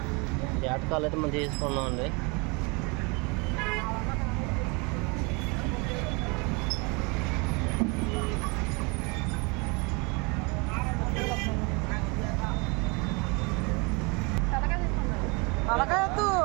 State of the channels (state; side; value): quieter; left; 29.7 dB